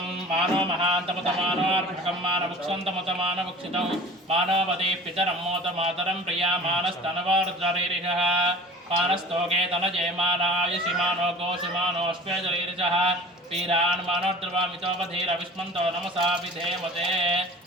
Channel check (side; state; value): both; normal; correlation 0.42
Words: మానో మహాంతమతమానో అర్భకం మానవక్షంతమతమానవక్షితం మానవదే పితరమ్మోత మాతరం ప్రియా మానస్తనవరుద్రరీరిహ మానస్తోకే తనజయమానాయుషి మానో గోషుమానోష్వేదరీరిజః వీరాన్ మానోద్రవామితోపధీరవిష్మంతో నమసా విధేమతే